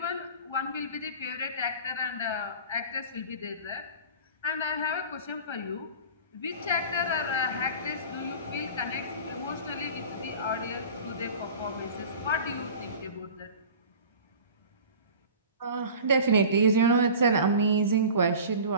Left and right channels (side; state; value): both; inverted; correlation -0.39